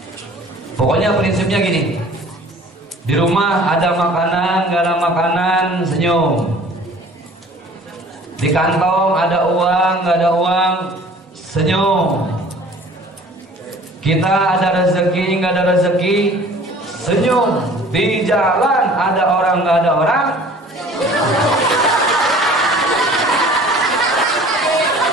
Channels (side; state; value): both; normal; correlation 0.49